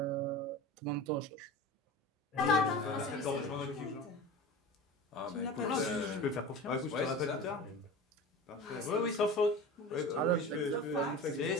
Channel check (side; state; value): both; normal; correlation 0.33